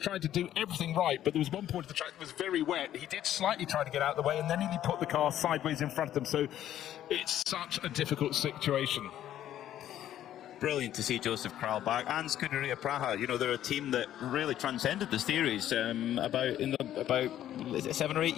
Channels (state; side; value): quieter; right; 11.8 dB